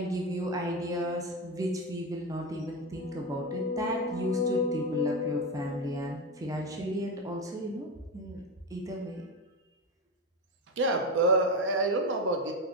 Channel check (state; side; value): normal; both; correlation 0.16